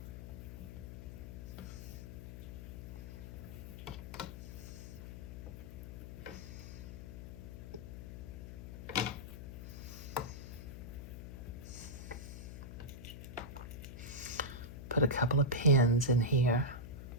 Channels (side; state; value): left; noise; hum, 9 dB below the sound